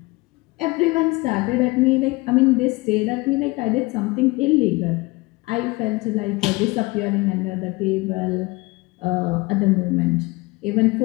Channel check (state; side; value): quieter; right; 23.7 dB